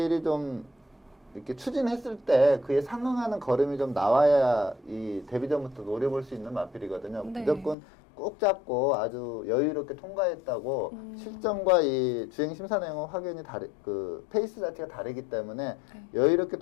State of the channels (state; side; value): drops out; right; at 7.8 s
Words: 좀 이렇게 추진했을 때 그에 상응하는 걸음이 좀 나와야 이 데뷔전부터 노려볼 수 있는 마필이거든요. 네. 무조건 꼭 잡고 아주 여유롭게 통과했다고 실전과 이 주행 심사 내용은 확연히 그 페이스 자체가 다르기 때문에 여유롭게